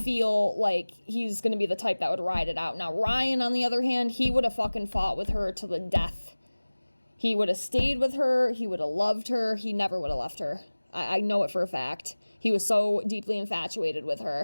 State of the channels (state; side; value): inverted; both; correlation -1.00